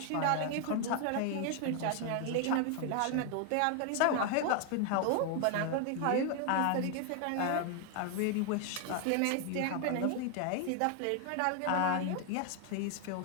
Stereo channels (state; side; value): different; both; correlation 0.00